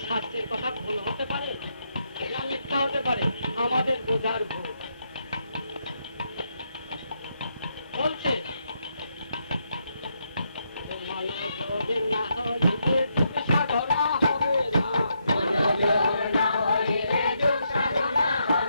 শাস্ত্রের কথা ভুল হতে পারে না মিথ্যা হতে পারে? আমাদের বোঝার ভুল। বলছে মনোযোগ না হইলে যোগ সাধনা হবে না, মনোযোগ না হইলে যোগ সাধনা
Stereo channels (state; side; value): inverted; both; correlation -0.79